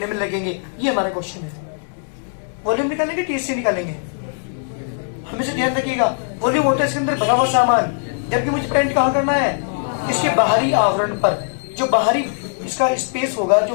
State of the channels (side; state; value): right; silent; 65 dB below the other